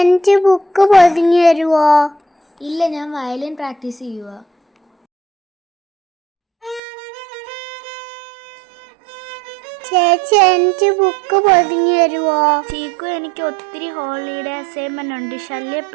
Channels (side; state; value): left; drops out; at 6.8 s